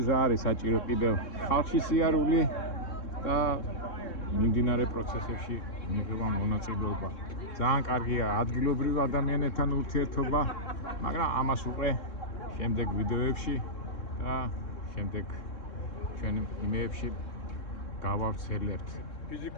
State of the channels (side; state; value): right; late; 3.7 ms